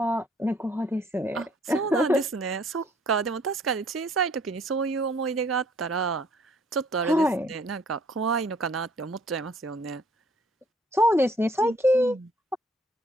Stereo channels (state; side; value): normal; both; correlation 0.61